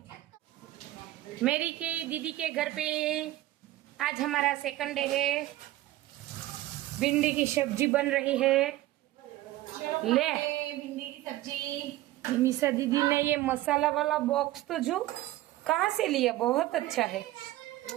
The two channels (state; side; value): quieter; left; 16.2 dB